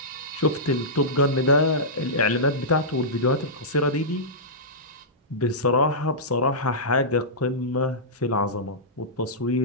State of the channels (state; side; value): normal; both; correlation -0.14